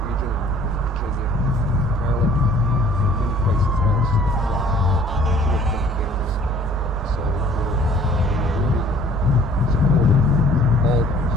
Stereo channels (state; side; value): normal; both; correlation 0.54